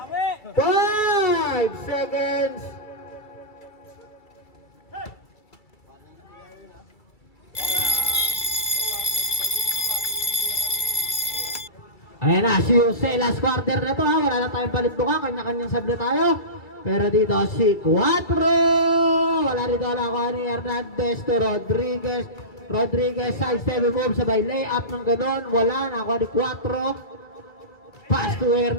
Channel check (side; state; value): right; late; 2.3 ms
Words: 5 seconds. Ayan na, si Jose, last quarter na to ha. Wala na tayong palit buka, kanya-kanyang sab na tayo. Pero dito si 4. Wala rito nakuha ni Hernandez to Rodriguez. Rodriguez, side step move, sabay layup ng ganon. Wala, nakuha ni 4. Pass to